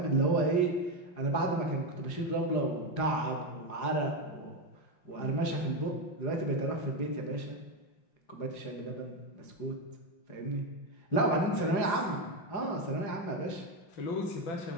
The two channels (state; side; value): late; right; 5.6 ms